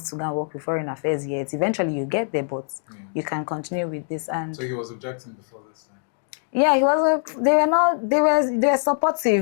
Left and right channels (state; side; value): silent; right; digital silence